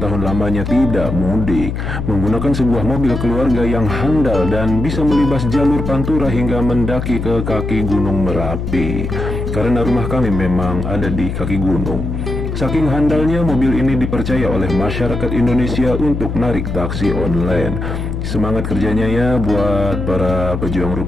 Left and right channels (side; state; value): left; noise; hum, 4 dB below the sound